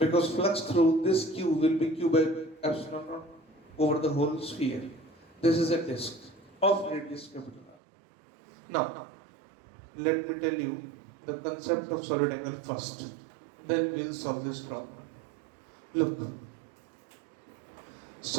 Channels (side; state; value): left; drops out; at 7.8 s